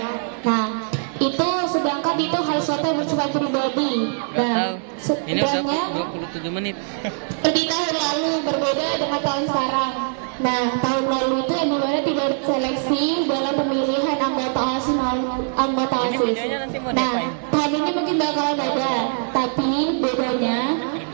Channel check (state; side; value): silent; left; 60 dB below the other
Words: Nah, itu sedangkan itu hal sesuatu yang bersifat pribadi. Nah, Ini udah sedangkan 27 menit. di tahun lalu berbeda dengan tahun sekarang. Nah, tahun lalu itu yang dimana tidak seleksi dalam pemilihan anggota OSIS. Ini videonya nanti mau Nah, diapain? tahun ini mungkin bakalan ada, tapi bedanya